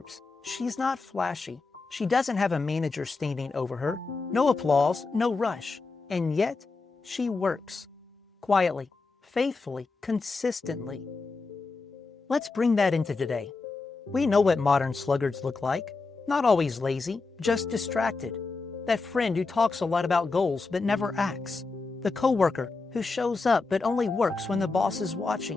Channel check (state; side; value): quieter; right; 4.0 dB